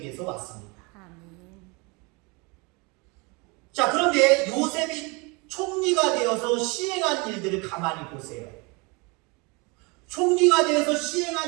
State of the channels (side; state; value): left; quieter; 28.6 dB